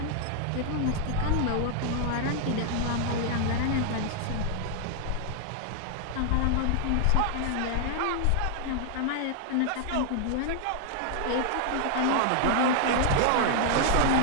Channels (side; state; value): both; different; correlation 0.00